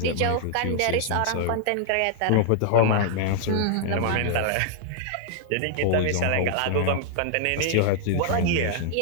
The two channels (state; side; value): different; both; correlation -0.01